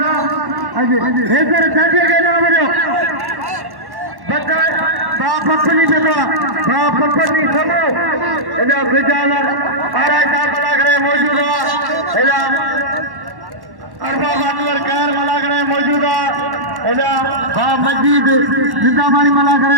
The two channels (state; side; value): late; left; 1.1 ms